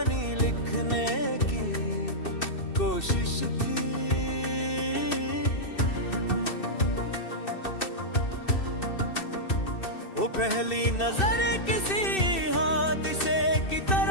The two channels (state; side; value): late; right; 2.6 ms